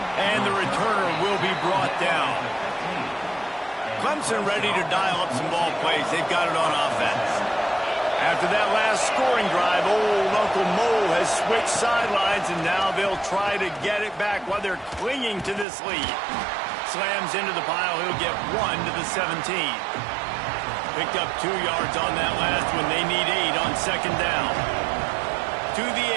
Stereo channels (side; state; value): left; drops out; at 15.7 s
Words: And the returner will be brought down. Clemson ready to dial up some ball plays. They've got it on offense. After that last scoring drive, old Uncle Mo has switched sidelines, and now they'll try to get it back while they're clinging to this lead. Slams into the pile. He'll get 1 to the 17. Picked up 2 yards on that last one. They need 8 on second down. To the